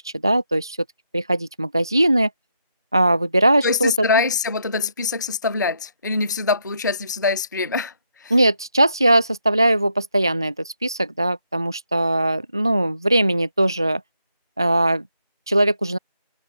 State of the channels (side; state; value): both; inverted; correlation -0.79